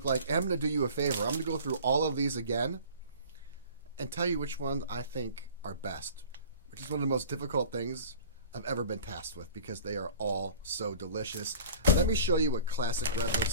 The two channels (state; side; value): inverted; both; correlation -0.43